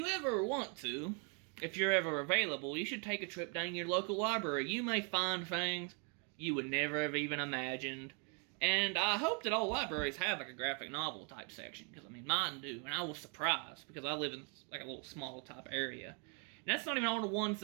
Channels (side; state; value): left; quieter; 38.1 dB